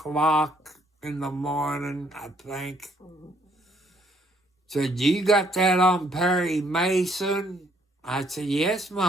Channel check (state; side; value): normal; both; correlation 0.67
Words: in the morning, I think. Said, you got that on Perry Mason? I said, yes,